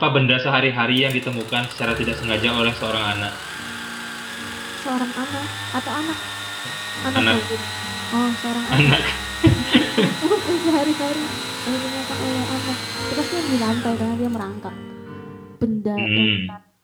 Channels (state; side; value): identical; both; correlation 1.00